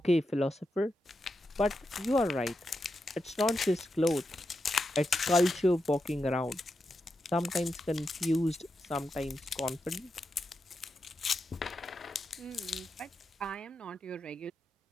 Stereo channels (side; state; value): both; normal; correlation 0.87